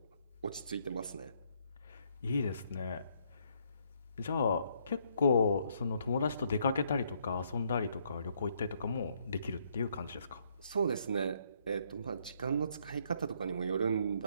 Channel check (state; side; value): inverted; both; correlation -0.70